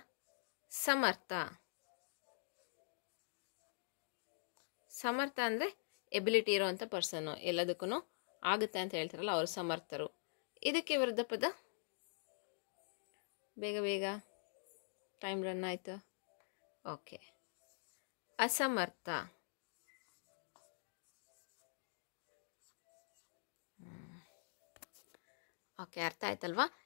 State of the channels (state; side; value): silent; right; digital silence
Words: ಸಮರ್ಥ. ಸಮರ್ಥ ಅಂದರೆ ಎಬಿಲಿಟಿ ಇರೋವಂಥ ಪರ್ಸನ್ನು, ಎಲ್ಲದಕ್ಕೂ ಆಗುತ್ತೆ ಅಂತ ಹೇಳ್ತಾರಲ್ಲ ಅವರು ಸಮರ್ಥರು. ಇದಕ್ಕೆ ವಿರುದ್ಧ ಪದ? ಬೇಗ ಬೇಗ, ಟೈಮ್ ರನ್ ಆಯಿತು. ಓಕೆ, ಅಸಮರ್ಥ. ಓಕೆ, ಅರ್ಥ ಆಯ್ತಲ್ವಾ?